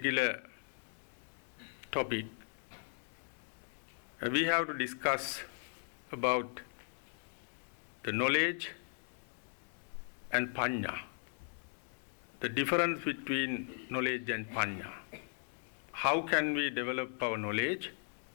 topic, we have to discuss about the knowledge and Pancha, the difference between knowledge and Pancha. How can we develop our knowledge,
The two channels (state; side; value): silent; right; 53 dB below the other